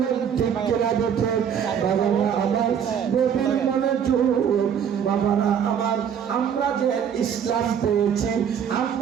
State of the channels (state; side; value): quieter; left; 8.1 dB